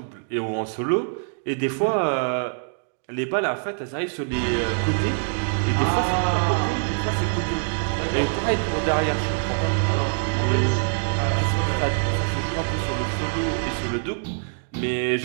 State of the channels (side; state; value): left; silent; digital silence